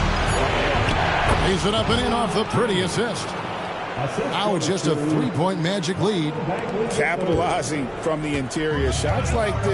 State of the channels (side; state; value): both; identical; correlation 1.00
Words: Lays it up and in off the pretty assist. Now it's just a 3-point Magic lead. Capitalizing from the interior. Shots like